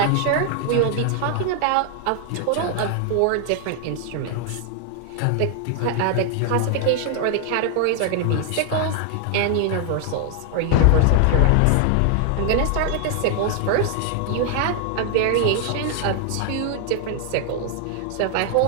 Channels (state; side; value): different; both; correlation 0.00